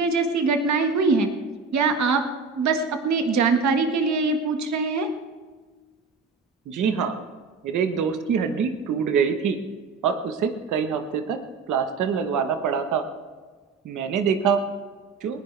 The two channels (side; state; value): left; quieter; 4.6 dB